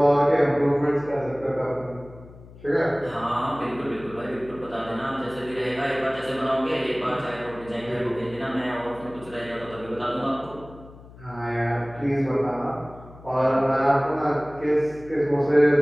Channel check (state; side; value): noise; left; hum, 19 dB below the sound